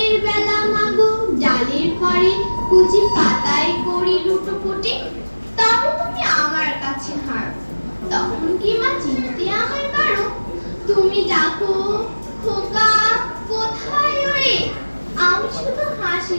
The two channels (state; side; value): inverted; both; correlation -1.00